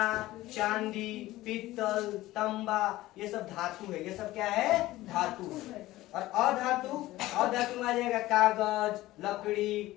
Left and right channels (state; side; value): quieter; right; 16.9 dB